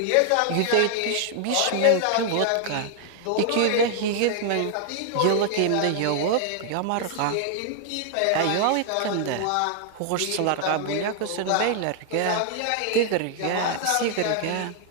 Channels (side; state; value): both; different; correlation 0.00